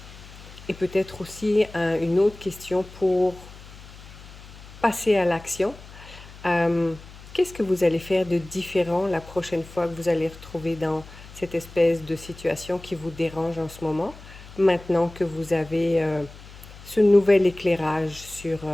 Et peut-être aussi une autre question pour passer à l'action. Qu'est-ce que vous allez faire de différent la prochaine fois que vous allez retrouver dans cette espèce de situation qui vous dérange en ce moment, maintenant que vous avez ce nouvel éclairage sur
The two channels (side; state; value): left; noise; hum, 18 dB below the sound